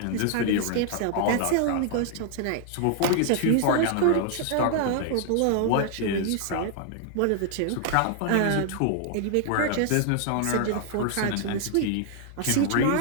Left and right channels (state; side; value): different; both; correlation 0.00